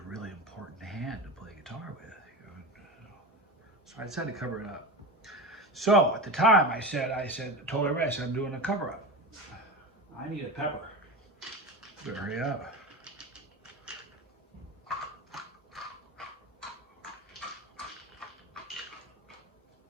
really important hand to play guitar with. So I decided to cover it up. So at the time I told everybody, I said, I'm doing a cover-up. I need a pepper. Better hurry up.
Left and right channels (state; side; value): normal; both; correlation 0.24